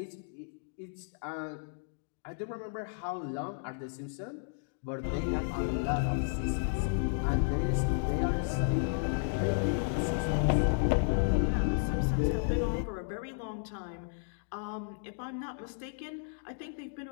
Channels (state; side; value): silent; right; digital silence